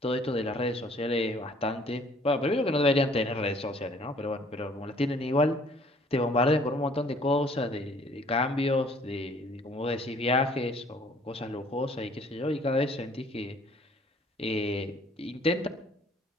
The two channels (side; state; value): both; normal; correlation 0.57